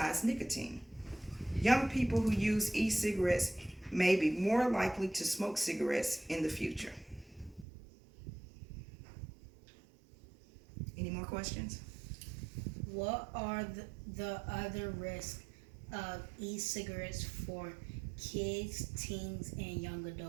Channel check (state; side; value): drops out; left; at 7.7 s